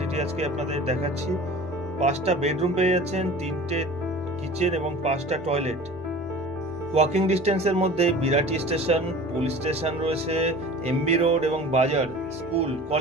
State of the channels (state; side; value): normal; both; correlation 0.40